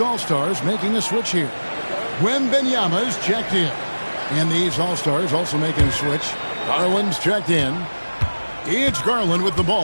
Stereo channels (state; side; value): inverted; both; correlation -1.00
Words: All-Stars making a switch here. Wembanyama's checked in. And the East All-Stars also making a switch. Garland's checked in. It's Garland with the